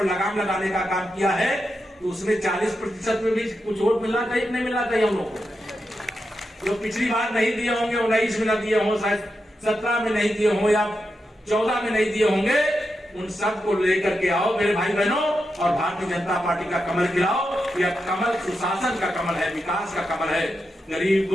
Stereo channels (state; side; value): normal; both; correlation 0.87